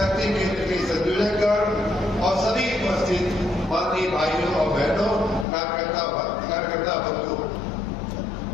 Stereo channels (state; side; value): drops out; right; at 5.5 s